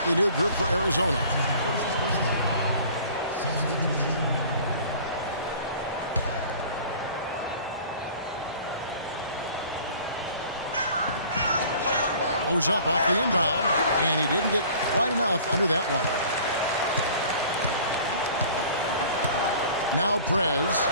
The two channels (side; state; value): both; inverted; correlation -0.47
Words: new group for Arizona. Goes up off the inbound, and he didn't get quite enough under that one. Now Prez,